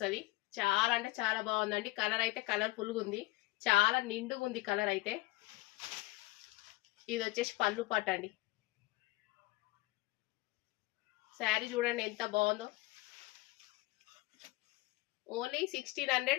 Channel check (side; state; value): right; quieter; 21.0 dB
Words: చాలా అంటే చాలా బాగుందండి. కలర్ అయితే కలర్ఫుల్గా ఉంది. చాలా నిండుగా ఉంది కలర్ అయితే. ఇది వచ్చేసి పళ్ళు పాట అండి. శారీ చూడండి ఎంత బాగుందో. ఓన్లీ